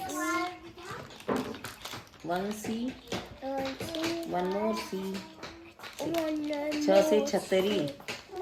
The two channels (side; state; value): both; identical; correlation 1.00